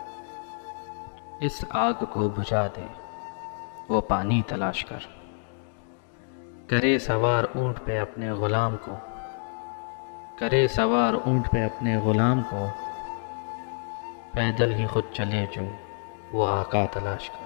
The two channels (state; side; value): silent; right; digital silence